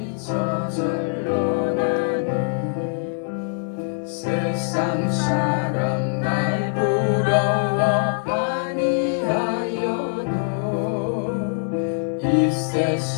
저절로 나네. 세상 사람 날 부러워 아니하여도 이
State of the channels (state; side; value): silent; right; digital silence